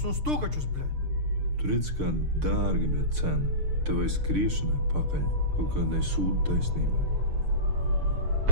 un stūkačus, bļē. Tu redz, kā dārga bija cena. Tevai skriešanai pakaļ kaut kādai sūdu taisnībai.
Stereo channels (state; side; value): late; left; 6.6 ms